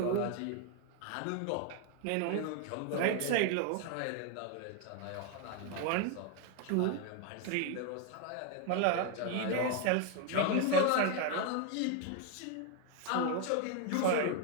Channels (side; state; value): both; different; correlation 0.01